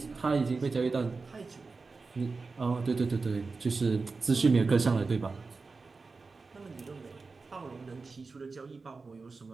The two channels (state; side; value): quieter; left; 4.2 dB